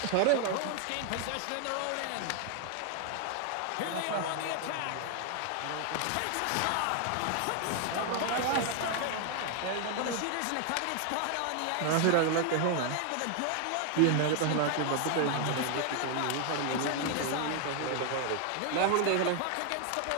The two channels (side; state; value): both; different; correlation 0.00